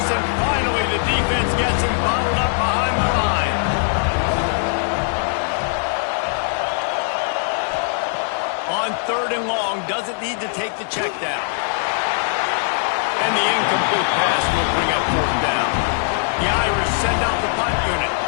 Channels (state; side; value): silent; right; digital silence